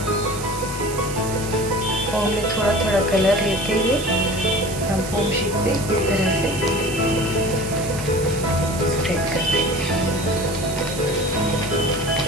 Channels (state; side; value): noise; right; hiss, 10 dB below the sound